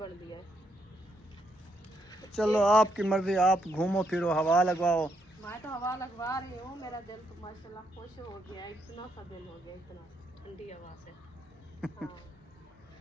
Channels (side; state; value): both; normal; correlation 0.77